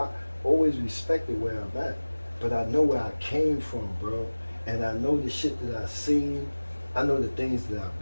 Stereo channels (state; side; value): inverted; both; correlation -1.00